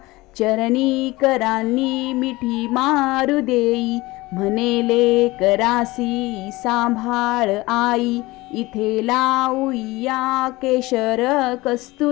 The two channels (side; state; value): right; quieter; 20.6 dB